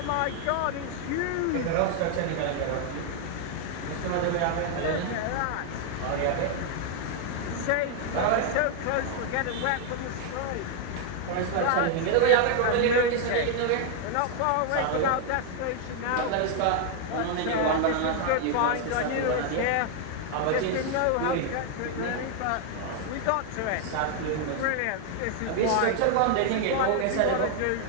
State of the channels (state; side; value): different; both; correlation 0.00